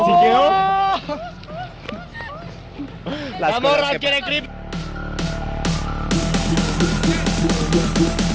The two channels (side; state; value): both; identical; correlation 1.00